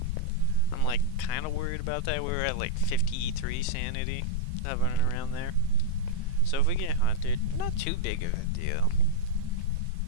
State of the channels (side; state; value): both; different; correlation -0.03